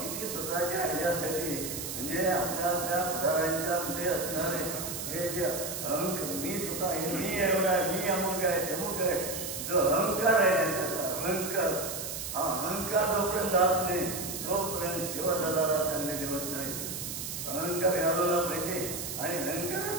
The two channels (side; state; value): right; noise; hiss, 5 dB below the sound